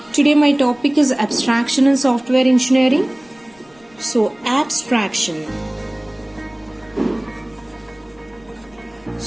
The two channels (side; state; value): left; noise; rumble, 30 dB below the sound